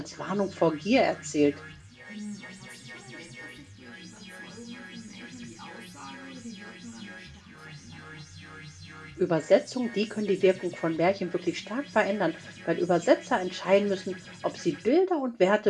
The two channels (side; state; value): both; identical; correlation 1.00